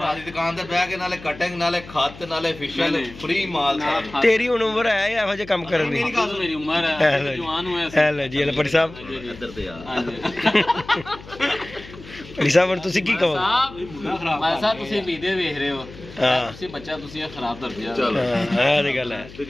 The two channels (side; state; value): left; noise; hum, 17 dB below the sound